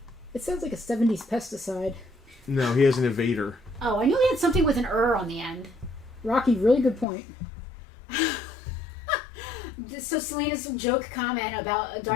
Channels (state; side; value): drops out; right; at 7.1 s